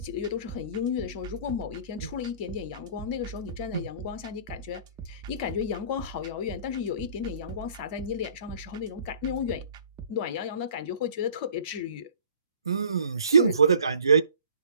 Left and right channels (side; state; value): both; inverted; correlation -0.50